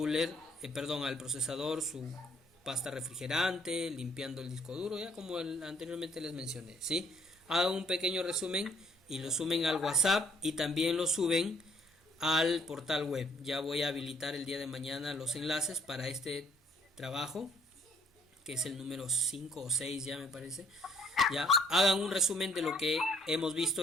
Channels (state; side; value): normal; both; correlation 0.64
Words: al procesador su pasta refrigerante, limpiando el disco duro, ya como anteriormente les mencioné, ¿sí? Hagan un pequeño resumen y lo suben al WhatsApp y también lo suben al portal web. Ya voy a habilitar el día de mañana los enlaces para este trabajo, que es el número 5 o 6 ya me parece. Ya, hagan un resumen de lo que hemos